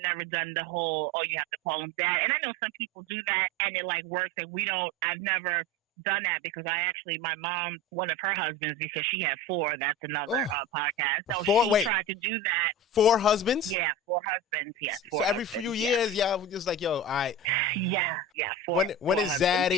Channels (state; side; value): normal; both; correlation 0.29